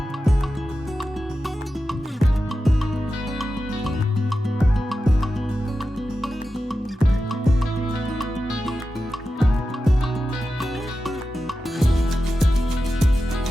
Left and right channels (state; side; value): normal; both; correlation 0.92